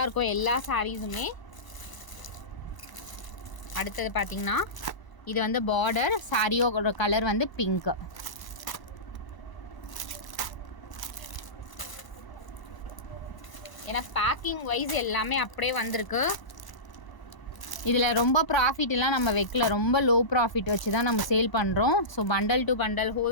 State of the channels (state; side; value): late; right; 1.0 ms